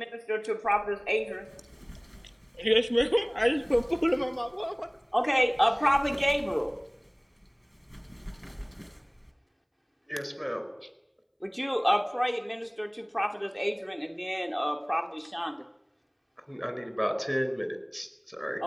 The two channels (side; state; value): both; identical; correlation 1.00